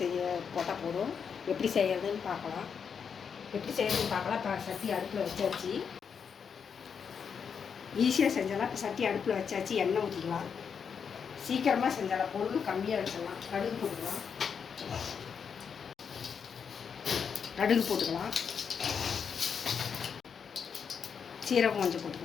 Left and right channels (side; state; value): right; quieter; 6.7 dB